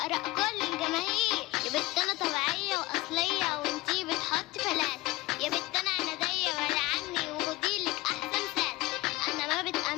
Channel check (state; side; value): quieter; right; 20.1 dB